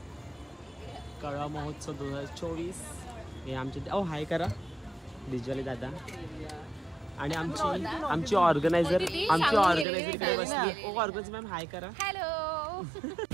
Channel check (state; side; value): drops out; left; at 9.9 s